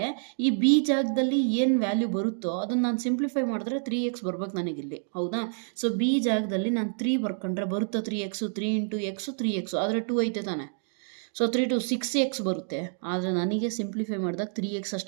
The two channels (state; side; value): silent; left; digital silence